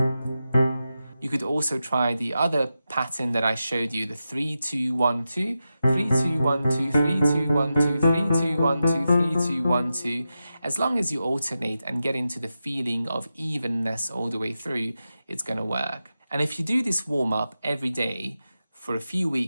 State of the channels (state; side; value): inverted; both; correlation -0.90